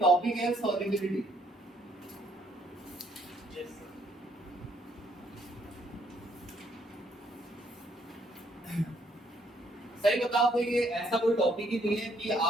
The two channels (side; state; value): both; normal; correlation 0.68